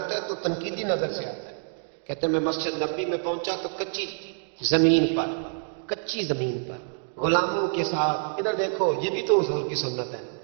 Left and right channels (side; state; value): left; silent; 60 dB below the other